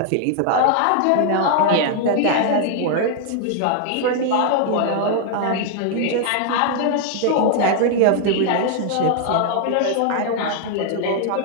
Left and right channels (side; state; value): both; different; correlation 0.00